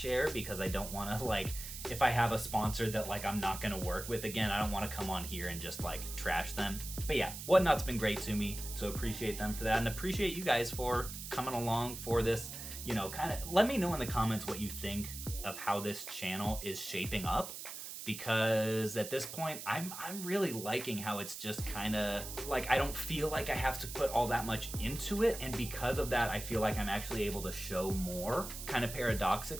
because I don't want to, like, if I have a sponsor that like I'm not gonna work with again, I don't want to come on here and just like trash them. But yeah, Whatnot's been great to me, so appreciate them for that, and appreciate you guys for coming along for this. You know, kind of let me know in the comments what you think of how this channel is shaping up, because at this point I'm really liking how it's just kind of like, I don't feel like I have to put all that much into it, and because of that I feel like I'm actually able to show more, kind of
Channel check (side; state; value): right; noise; hiss, 9 dB below the sound